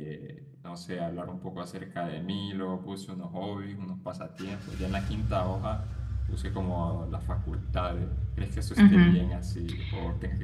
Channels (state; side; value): identical; both; correlation 1.00